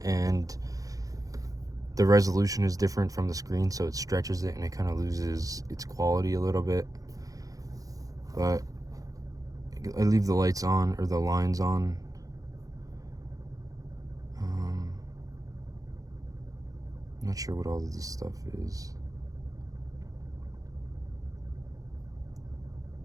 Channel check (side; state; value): left; late; 0.17 ms